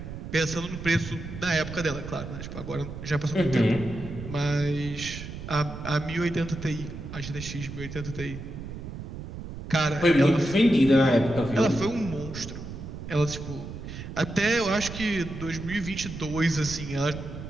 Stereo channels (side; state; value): right; noise; rumble, 9 dB below the sound